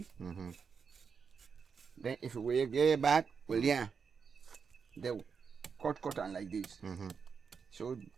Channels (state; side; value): quieter; left; 6.0 dB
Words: Then if we get back, well, yeah, they cut on like this. So